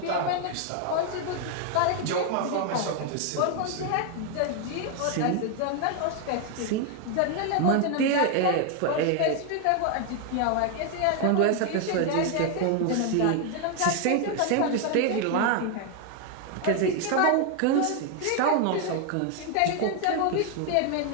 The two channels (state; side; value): different; both; correlation 0.01